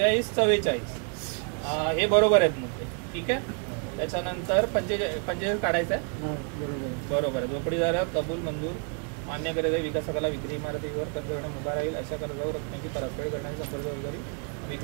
44 हे बरोबर आहेत मुद्दे, ठीक आहे। त्याच्यानंतर 45 काढायचं आहे, बरोबर आहे। झोपडीधारक कबूल मंजूर मान्य करीत आहे, विकासकाला विक्री इमारतीवर कर्ज घेण्यास उभा राहील, अशा कर्जावर रकमेची परतफेड करण्याची संपूर्ण जबाबदारी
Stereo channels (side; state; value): left; quieter; 39.4 dB